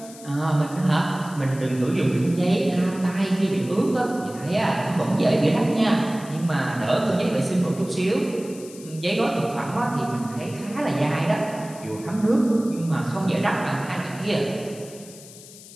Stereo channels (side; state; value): left; noise; hiss, 18 dB below the sound